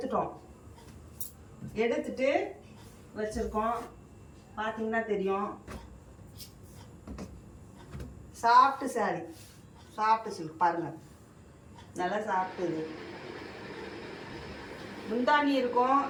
எடுத்துட்டு வச்சுருக்கோம். பார்த்தீங்கன்னா தெரியும். சாஃப்ட் சாரி, சாஃப்ட் சில்க் பாருங்கள், நல்லா சாப்பிட்டுது. முந்தானி இருக்கும்,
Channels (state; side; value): identical; both; correlation 1.00